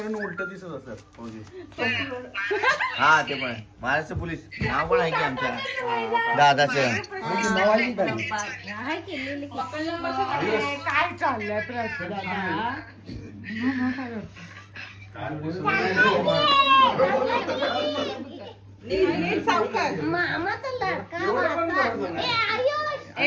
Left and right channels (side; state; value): both; identical; correlation 1.00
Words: उलट दिसत असत. हा ते पण महाराष्ट्र पोलीस नाव पण आहे की आमच्या दादाचं. काय चाललंय मामाचा लाडका